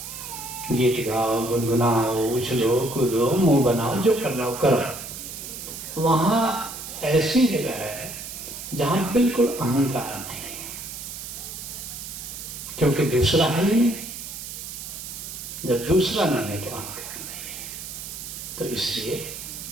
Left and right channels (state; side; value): noise; right; hiss, 9 dB below the sound